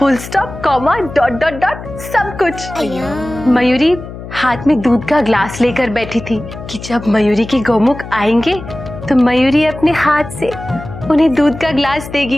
stop, comma, dot dot dot, सब कुछ। मयूरी हाथ में दूध का ग्लास लेकर बैठी थी कि जब मयूरी के गोमुख आएंगे तो मयूरी अपने हाथ से उन्हें दूध का ग्लास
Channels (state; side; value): noise; left; hum, 12 dB below the sound